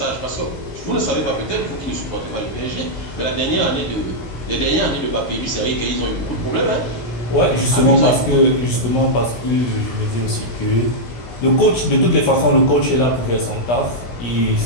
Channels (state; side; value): late; right; 17 ms